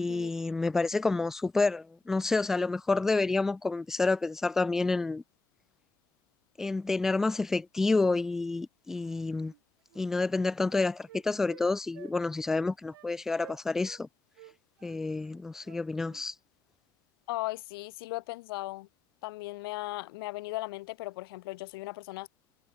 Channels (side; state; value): right; quieter; 3.3 dB